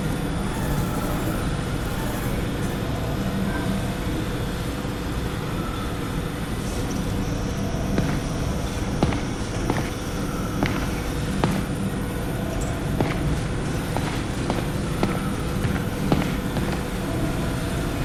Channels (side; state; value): both; identical; correlation 1.00